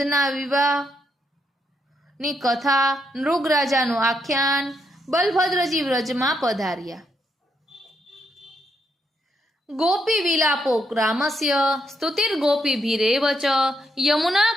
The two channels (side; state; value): both; normal; correlation 0.78